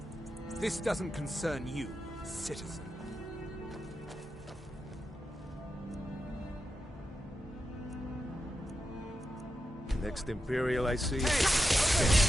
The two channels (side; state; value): both; normal; correlation 0.88